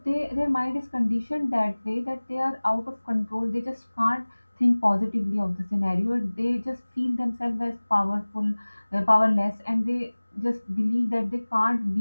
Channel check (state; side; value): inverted; both; correlation -1.00